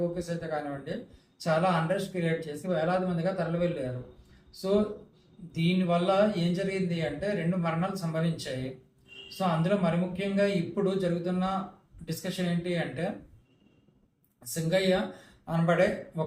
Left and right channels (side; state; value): both; identical; correlation 1.00